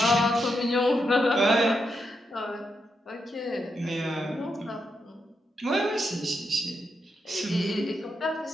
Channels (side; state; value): both; normal; correlation 0.83